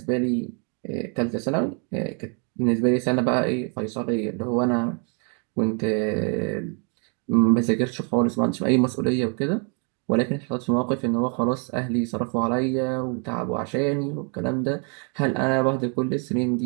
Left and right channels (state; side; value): quieter; left; 38.7 dB